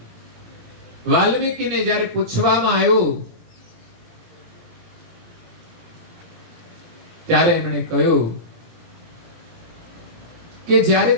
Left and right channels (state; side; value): late; left; 17 ms